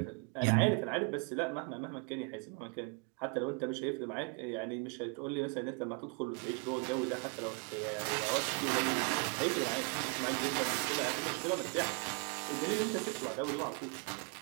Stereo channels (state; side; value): quieter; left; 34.5 dB